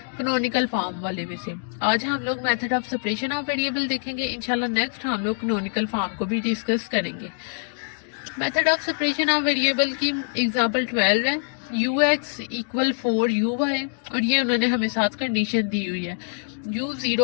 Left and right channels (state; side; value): silent; right; digital silence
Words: कैनोनिकल फॉर्म वाले में से। आज हम लोग method of separation of variable देखेंगे। इंशाल्लाह नेक्स्ट हम लोग कैनोनिकल फॉर्म को भी डिस्कस करेंगे। Method of separation of variable की एग्जाम्पल 12 है, ux इक्वल 4uy, और ये उन्होंने हमें साथ कंडीशन दी हुई है